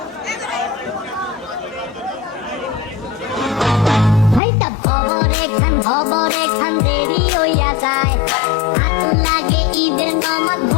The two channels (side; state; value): right; drops out; at 4.4 s